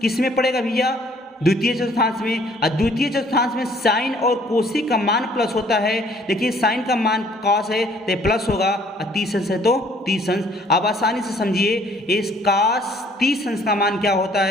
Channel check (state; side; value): normal; both; correlation 0.59